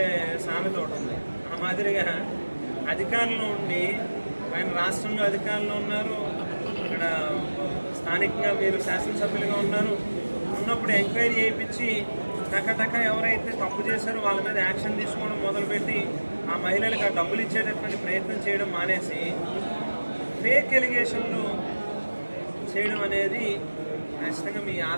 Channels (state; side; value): inverted; both; correlation -1.00